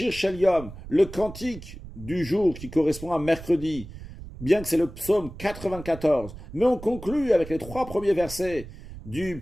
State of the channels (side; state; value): right; noise; rumble, 14 dB below the sound